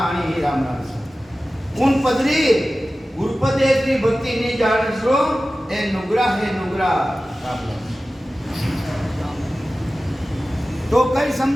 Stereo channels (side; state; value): both; normal; correlation 0.95